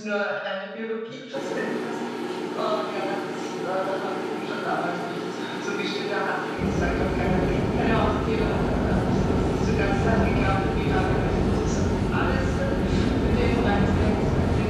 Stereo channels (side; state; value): both; identical; correlation 1.00